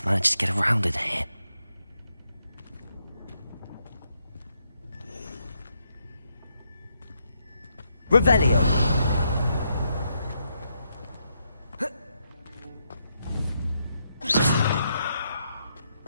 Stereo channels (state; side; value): inverted; both; correlation -0.79